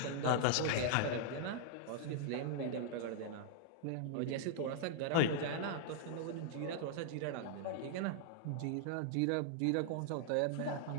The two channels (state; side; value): different; both; correlation -0.01